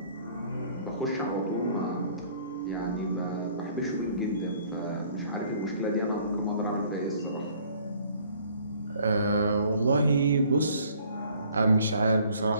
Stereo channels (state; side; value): inverted; both; correlation -0.58